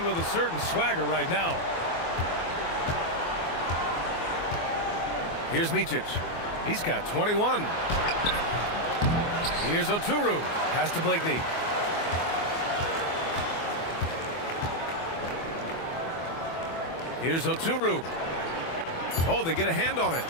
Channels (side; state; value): right; late; 24 ms